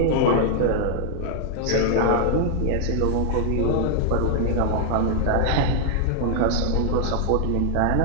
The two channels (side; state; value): both; different; correlation -0.01